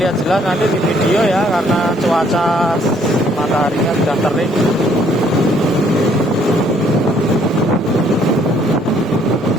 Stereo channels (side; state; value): right; noise; rumble, 27 dB below the sound